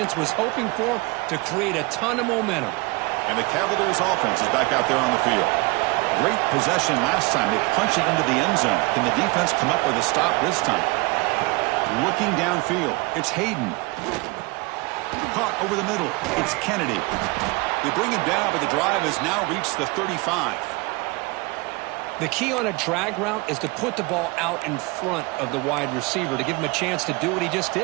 was hoping for to create a ton of momentum. And the Cavaliers' offense is back out there on the field. Great possession last time. They punch it into the end zone. Can the defense come up with a stop this time? Looking downfield. It's Hayden. Caught over the middle. It's Kennedy. They bring him down, but the drive has now reached the 35. The key on a drag route is to put the ball out in front of the wide receiver to give him a chance to do what he just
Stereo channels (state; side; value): quieter; left; 25.5 dB